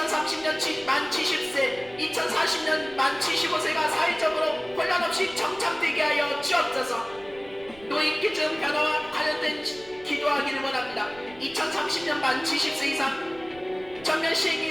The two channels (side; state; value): right; noise; rumble, 23 dB below the sound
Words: 만 70세, 2040년 만 75세가 사회적으로 혼란 없이 정착되게 하여 주옵소서. 노인 기준 변화와 관련된 기도하기를 원합니다. 2030년 만 70세 이상 전면